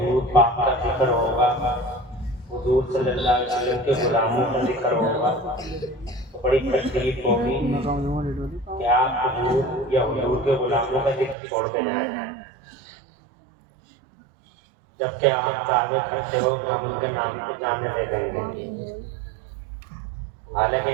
پاک کا ذکر ہوگا، حضور صلی اللہ علیہ وسلم کے غلاموں کا ذکر ہوگا، تو بڑی تکلیف ہوگی کہ آپ حضور یا حضور کے غلاموں کا ذکر چھوڑ کے جائیں، جبکہ آپ دعوے کرتے ہو کہ ہم ان کے نام پہ جانے دے دیں گے. حالانکہ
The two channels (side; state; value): left; drops out; at 11.4 s